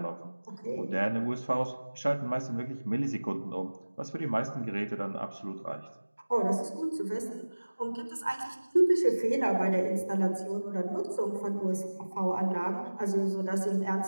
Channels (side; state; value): both; inverted; correlation -1.00